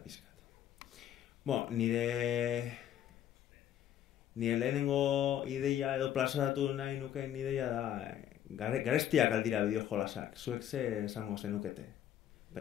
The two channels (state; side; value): quieter; right; 10.7 dB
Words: Nire lehenengo ideia edo plazaratu nahi nukeen ideia da garestiak aldira bideo jolasak. Zuek ze esango zenukete.